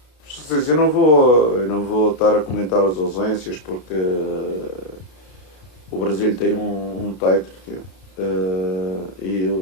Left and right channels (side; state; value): right; late; 33 ms